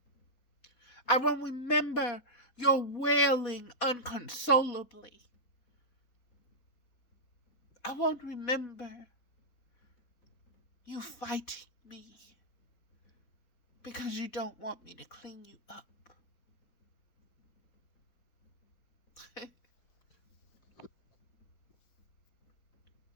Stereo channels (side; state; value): right; late; 4.1 ms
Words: I will remember your wailing unconsolably. I won't remember you fighting me because you don't want me to clean you up.